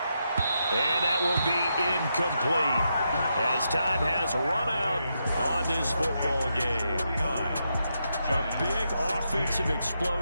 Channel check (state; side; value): inverted; both; correlation -0.83